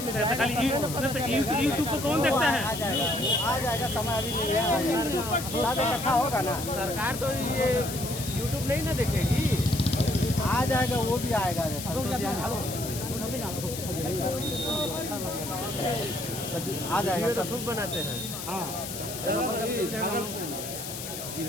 में खाली यूट्यूब को कौन देखता है? आ जाएगा, समय अभी नहीं है, रखा होगा ना। सरकार तो ये यूट्यूब नहीं ना देखेगी, आ जाएगा, वो भी आएगा। आ जाएगा, सब खूब बनाते हैं।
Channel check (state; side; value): noise; left; hiss, 8 dB below the sound